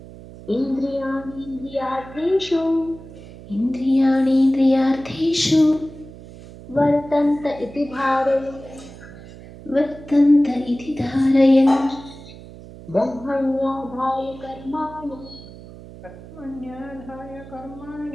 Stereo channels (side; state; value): right; noise; hum, 17 dB below the sound